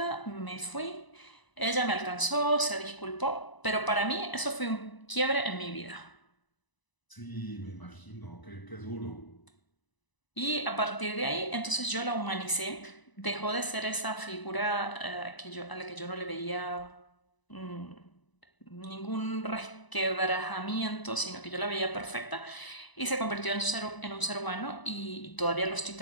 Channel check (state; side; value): late; right; 1.0 ms